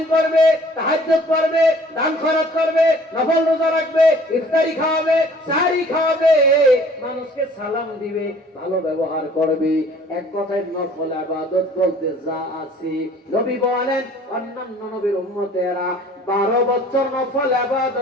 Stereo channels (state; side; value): normal; both; correlation 0.53